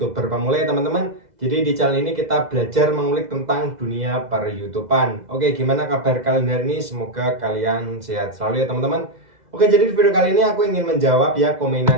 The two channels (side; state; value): left; late; 2.0 ms